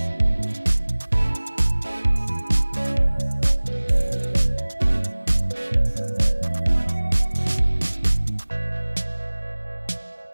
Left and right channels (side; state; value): both; inverted; correlation -1.00